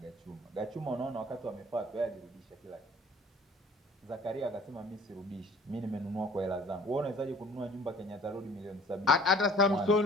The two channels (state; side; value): normal; both; correlation 0.51